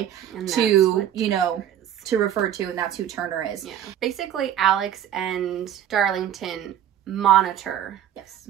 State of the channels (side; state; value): left; quieter; 10.6 dB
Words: to, you know, to refer to, and that's who Turner is. Yeah. Basically, Alex and Darlington monitor